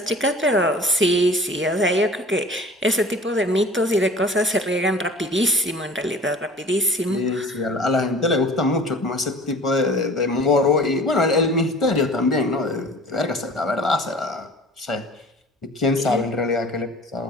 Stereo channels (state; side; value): normal; both; correlation 0.44